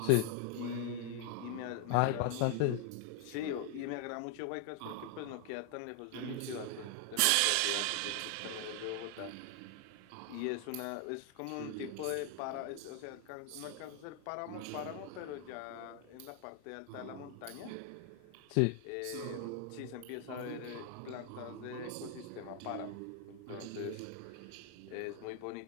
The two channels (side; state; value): both; different; correlation 0.00